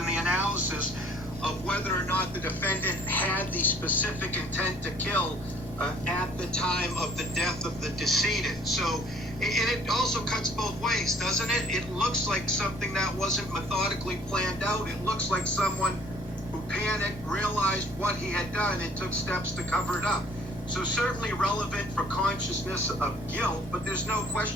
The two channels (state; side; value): noise; left; rumble, 15 dB below the sound